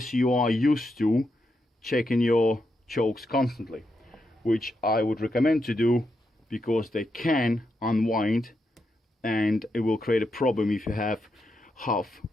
you are used to checking your chokes constantly, which I would recommend to do, because they can unwind and it will create a problem if you have half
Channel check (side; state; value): both; normal; correlation 0.84